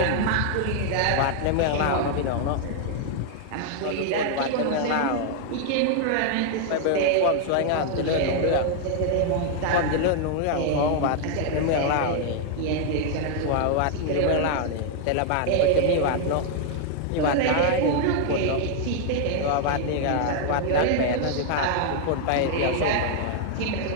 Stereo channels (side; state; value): both; different; correlation 0.00